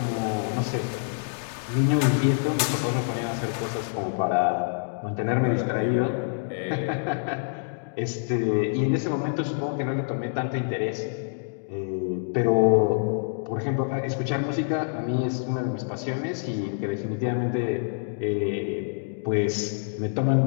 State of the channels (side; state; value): right; silent; digital silence